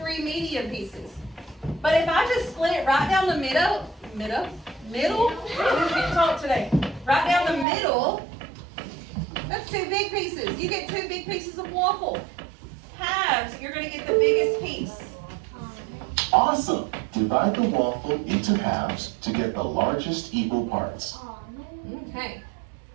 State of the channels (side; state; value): left; drops out; at 7.7 s